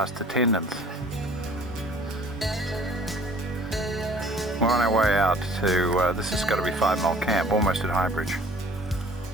attendants. We're on our way out to, this has got to be 5 Mile Camp, almost at Highbridge.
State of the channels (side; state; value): both; normal; correlation 0.53